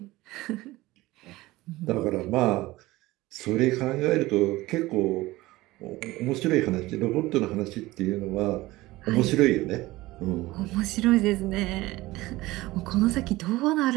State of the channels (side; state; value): left; quieter; 18.9 dB